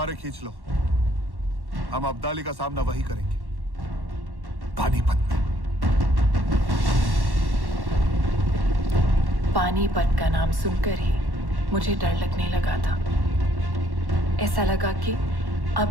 खींच लो, हम अब्दाली का सामना वही करेंगे, पानीपत में। पानीपत का नाम सुनकर ही मुझे डर लगने लगा था। ऐसा लगा कि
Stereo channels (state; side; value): late; left; 1.1 ms